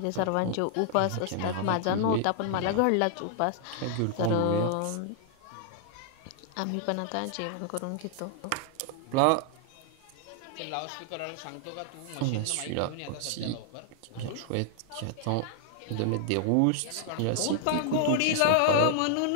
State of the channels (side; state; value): both; different; correlation 0.00